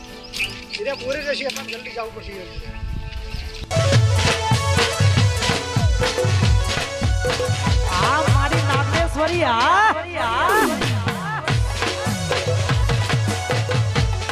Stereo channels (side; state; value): both; identical; correlation 1.00